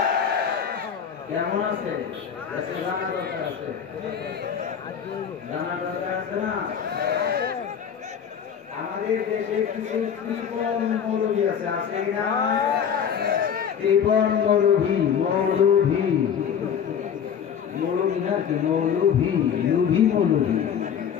কেমন আছে? জানা দরকার আছে, জানা দরকার আছে না? আমাদের দেশে কিছু কৃপণ মৌলভী আছে, আছে কিনা? কৃপণ মৌলভী, মৌলভী মৌলভী না কি মৌলভী, লুভি মৌলভী।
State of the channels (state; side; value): quieter; right; 7.9 dB